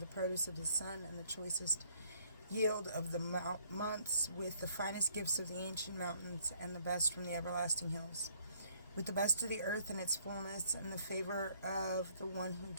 produce of the sun, and the choicest yield of the months, with the finest gifts of the ancient mountains, and the best from the everlasting hills, with the best of the earth and its fullness, and the favor of the one who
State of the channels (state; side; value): inverted; both; correlation -0.65